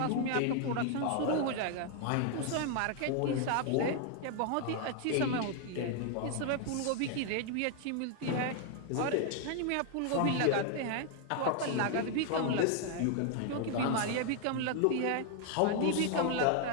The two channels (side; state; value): both; different; correlation 0.00